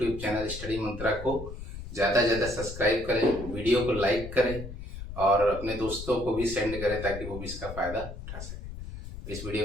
चैनल स्टडी मंत्रा को ज़्यादा से ज़्यादा सब्सक्राइब करें, वीडियो को लाइक करें और अपने दोस्तों को भी सेंड करें ताकि वो भी इसका फ़ायदा उठा सकें। इस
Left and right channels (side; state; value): left; noise; rumble, 10 dB below the sound